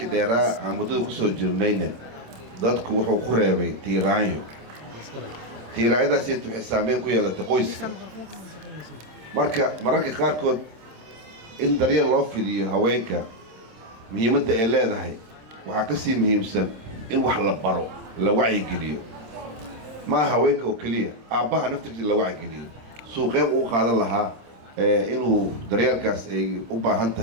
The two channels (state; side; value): late; left; 26 ms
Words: dheeraa aan muddada ku soo jirnayna dadku wuxuu ku reebay tiiraanyo tiiraayadaas waxay saameyn ku yeelatay qoyska mararka qaarkood in daryeel loo fidiyo haweenka muhiimadda ay leedahay waxaa ka sii muhiimsan in wax la baro la wacyigeliyo ma haweenka oo kaliya aabbaha naftiisa la wacyigeliyo suuqeed uu qaadan lahaa inuu daryeelkaas ay u baahan